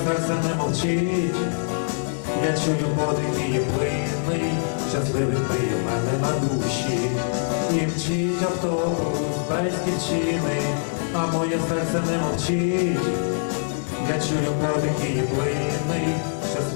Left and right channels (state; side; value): silent; right; digital silence